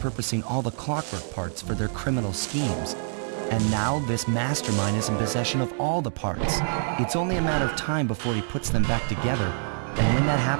all the clockwork parts for their criminal schemes. And now this mastermind is in possession of all the parts. It's only a matter of time before he puts them back together. And when that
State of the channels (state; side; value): silent; left; digital silence